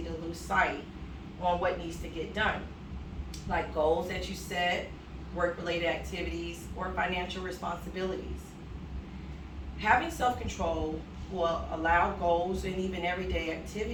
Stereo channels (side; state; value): both; identical; correlation 1.00